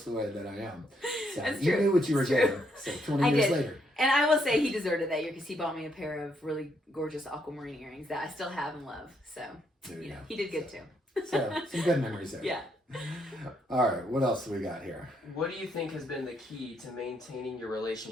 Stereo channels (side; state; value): both; normal; correlation 0.75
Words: the way that I am. So That's you true. knew what you were doing. So 20 years later. And I will say he deserved it that year because he bought me a pair of really gorgeous aquamarine earrings that I still have and love. So, he did good too. So, some good memories there. Yeah. All right, what else do we got here? What do you think has been the key to maintaining your